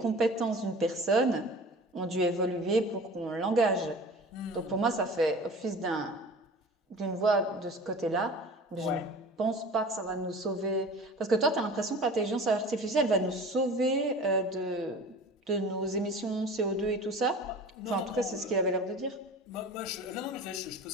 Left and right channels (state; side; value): normal; both; correlation 0.40